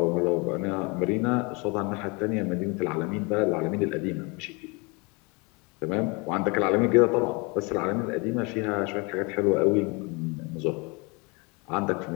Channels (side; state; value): right; quieter; 29.2 dB